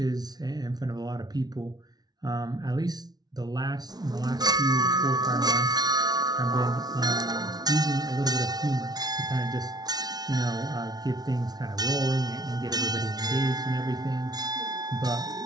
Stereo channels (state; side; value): late; left; 0.19 ms